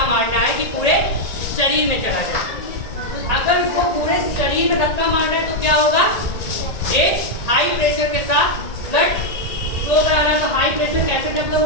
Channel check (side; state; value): right; late; 1.8 ms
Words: मारना है कि पूरे शरीर में चला जाए। अगर उसको पूरे शरीर में धक्का मारना है तो क्या होगा, एक हाई प्रेशर के साथ ब्लड फ्लो कराना। तो हाई प्रेशर कैसे डेवलप